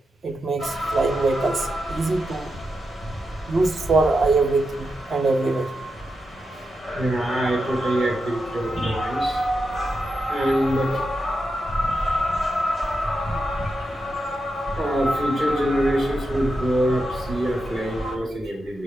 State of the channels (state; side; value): normal; both; correlation 0.87